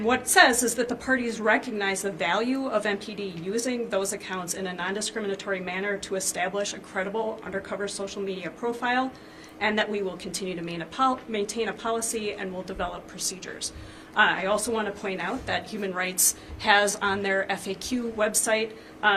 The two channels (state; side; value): identical; both; correlation 1.00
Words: what it says is that the parties recognize the value of MPD using those accounts in a non-discriminatory manner to establish a credible undercover social media profile, and that we will continue to maintain a policy and will develop procedures. I also want to point out that Human Rights has on their FAQ website,